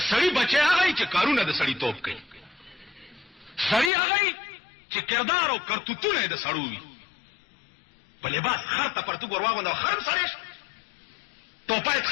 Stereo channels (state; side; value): drops out; right; at 3.9 s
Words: سړی بچي هغه چې کارونه د سړی توپ کوي سړی هغه چې کردار او کرتوتونه د سړو وي. په لباس خر ته پرتو ورواغونده خرم سړی ټوپایت